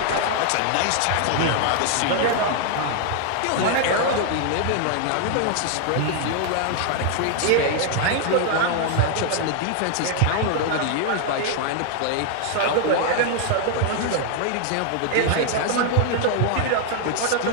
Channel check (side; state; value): both; different; correlation 0.00